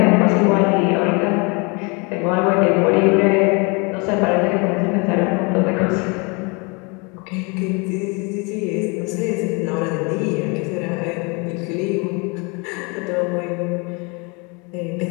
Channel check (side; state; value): right; quieter; 30.5 dB